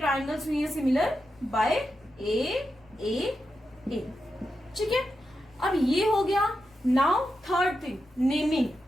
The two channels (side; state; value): left; noise; rumble, 29 dB below the sound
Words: हुई है सिमिलर? बाय ए ठीक है। अब ये हो गया। Now third thing, naming.